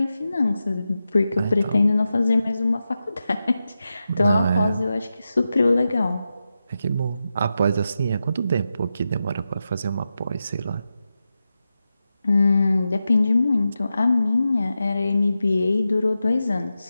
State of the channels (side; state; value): both; inverted; correlation -0.90